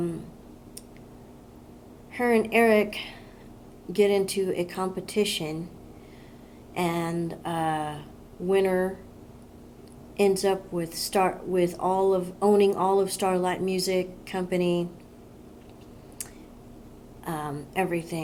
and Eric get into a competition, and winner ends up with owning all of Starlight Music Company,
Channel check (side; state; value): both; identical; correlation 1.00